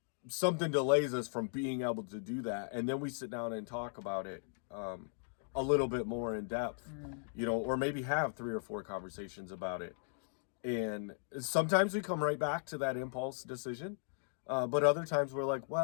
something delays us from being able to do that, and then we sit down and talk about it a little bit more in depth, you know, or maybe have 3 or 4 conversations about it. And sometimes we come right back to that impulse decision. But other times we're like,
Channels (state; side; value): silent; right; digital silence